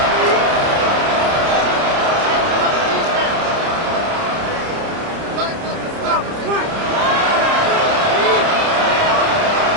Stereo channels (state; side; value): late; left; 30 ms